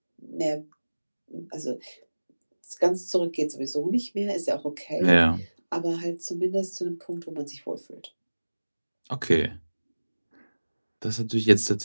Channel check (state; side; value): inverted; both; correlation -1.00